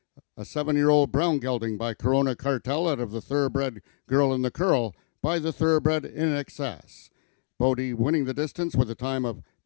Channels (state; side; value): silent; right; digital silence